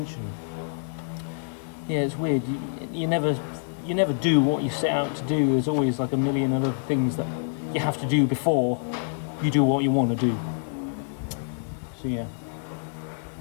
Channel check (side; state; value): right; silent; digital silence